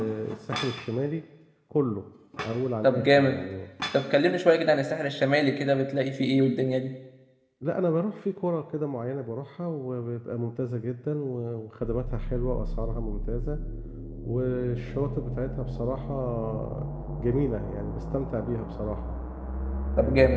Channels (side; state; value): both; identical; correlation 1.00